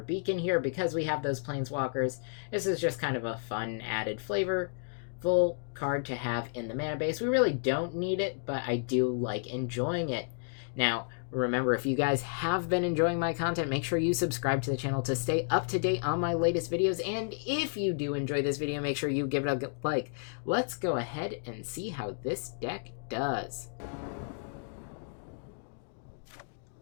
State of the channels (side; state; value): right; silent; digital silence